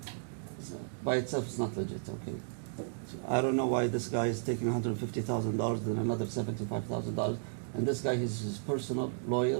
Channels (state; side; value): silent; left; digital silence